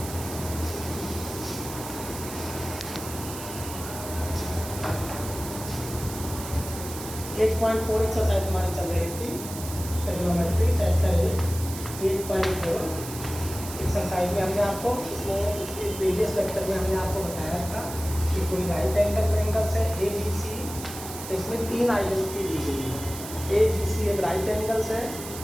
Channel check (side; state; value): right; noise; hiss, 10 dB below the sound